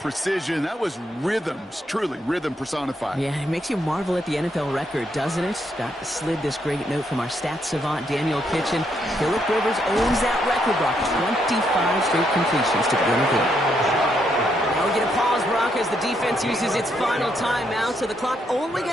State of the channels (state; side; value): normal; both; correlation 0.76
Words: That was rhythms, truly rhythm personified. Yeah, it makes you marvel at the NFL record, doesn't it? Got slid this great note from our stats savant, Daniel Kitchen. Phillip Rivers owns that record, Brock. 25 straight completions to begin the game. Now we get a pause, Brock, as the defense uses its final timeout, so the clock only